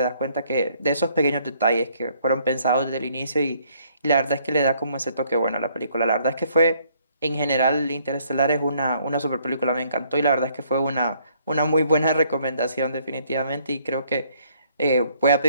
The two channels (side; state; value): both; inverted; correlation -0.66